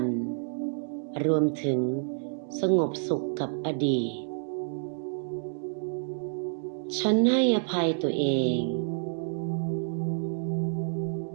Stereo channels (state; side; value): silent; left; digital silence